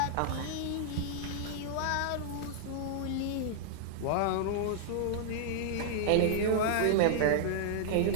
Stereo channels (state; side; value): different; both; correlation -0.01